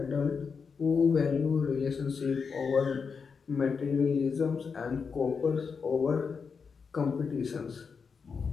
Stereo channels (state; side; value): quieter; right; 5.6 dB